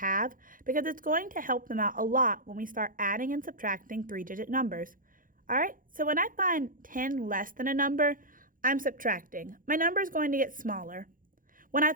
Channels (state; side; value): late; left; 0.40 ms